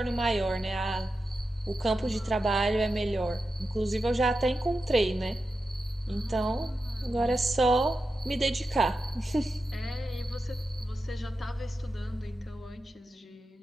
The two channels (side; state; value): both; normal; correlation 0.90